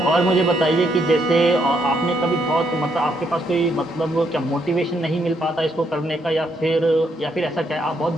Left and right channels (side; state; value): both; normal; correlation 0.75